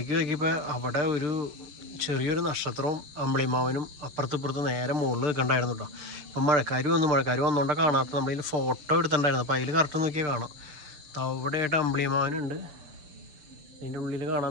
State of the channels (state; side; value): late; left; 6.8 ms